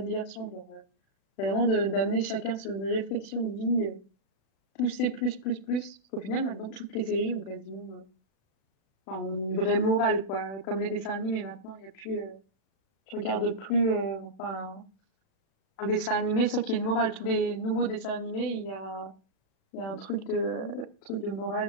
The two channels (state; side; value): late; right; 36 ms